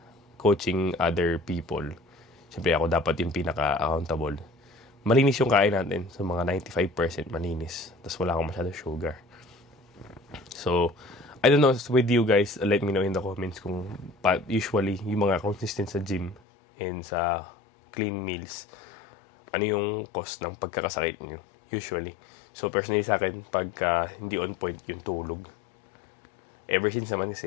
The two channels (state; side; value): drops out; right; at 16.4 s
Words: coaching other people. Siyempre ako dapat yung pinaka-accountable. Malinis yung kain natin. So, mga 95% malinis. Tapos wala akong masyado sugar. So, I don't know with you guys, let me know in the comments kung usually yung mga consistent sa gym and sa clean meals, ano yung cost ng pagkakasakit nyo, usually. So, personally sa akin, pagka hindi on point yung tulog, ever since naman